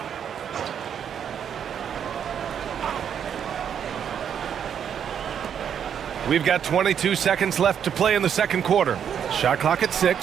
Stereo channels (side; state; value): left; quieter; 8.4 dB